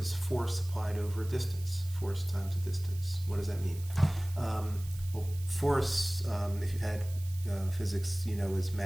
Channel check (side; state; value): right; noise; hiss, 18 dB below the sound